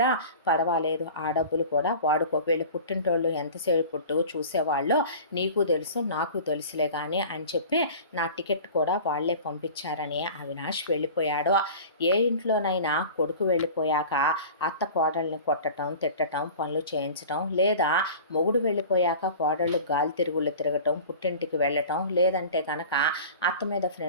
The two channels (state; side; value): inverted; both; correlation -0.39